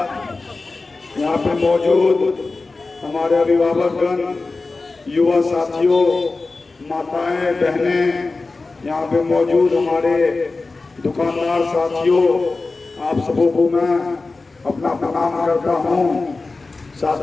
यहाँ पे मौजूद हमारे अभिभावकगण, युवा साथियों, माताएं, बहनें, यहाँ पे मौजूद हमारे दुकानदार साथियों, आप सबों को मैं अपना प्रणाम करता हूँ।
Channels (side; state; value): right; quieter; 3.7 dB